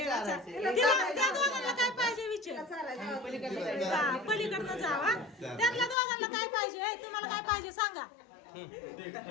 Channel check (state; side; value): drops out; right; at 6.0 s